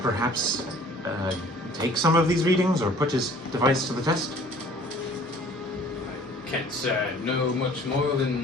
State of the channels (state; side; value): normal; both; correlation 0.52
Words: perhaps take some of these readings or put his device to the test. I can't say I know much more